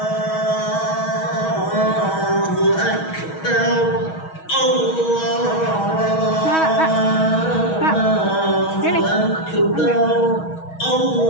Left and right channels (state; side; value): late; right; 6.3 ms